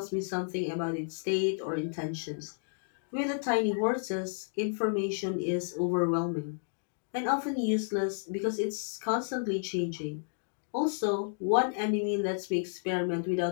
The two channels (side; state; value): right; silent; digital silence